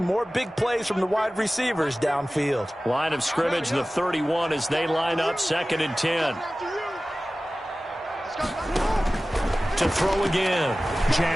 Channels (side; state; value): both; normal; correlation 0.97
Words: big plays from the wide receivers downfield. Line of scrimmage, the 31 as they line up, 2nd and 10. To throw again,